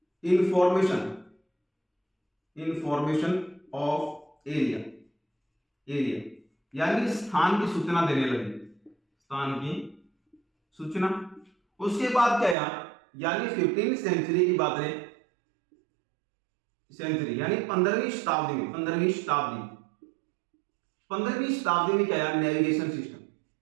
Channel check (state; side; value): drops out; left; at 12.6 s